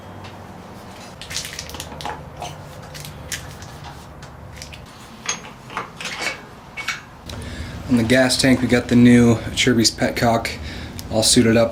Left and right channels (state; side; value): identical; both; correlation 1.00